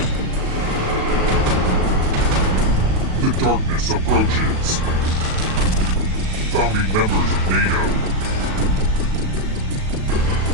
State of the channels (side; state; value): left; late; 37 ms